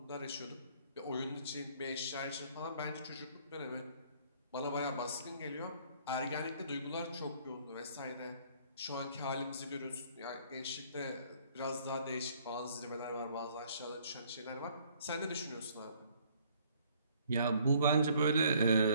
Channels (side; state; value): both; inverted; correlation -0.61